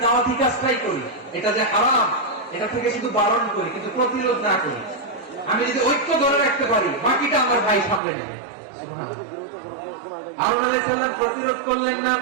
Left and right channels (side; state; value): left; drops out; at 8.0 s